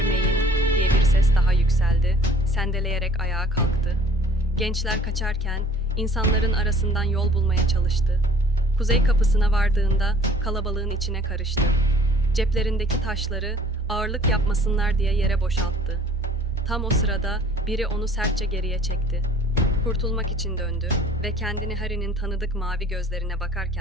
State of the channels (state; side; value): normal; both; correlation 0.52